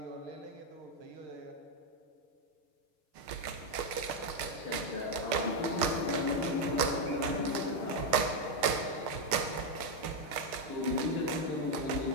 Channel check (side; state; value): left; late; 6.6 ms